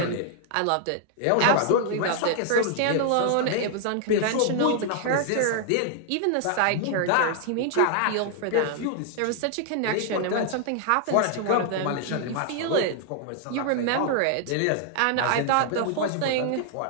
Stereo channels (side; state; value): both; different; correlation -0.01